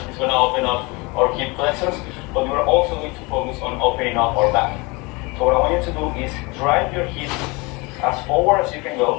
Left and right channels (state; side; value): quieter; right; 26.5 dB